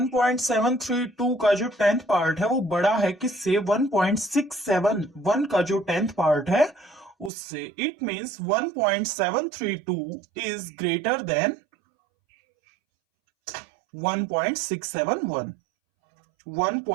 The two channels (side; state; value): left; drops out; at 7.3 s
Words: का जो 10th पार्ट है वो बड़ा है किससे? 1.671 का जो 10th पार्ट है उससे. It means 1.732 is greater then 1.671.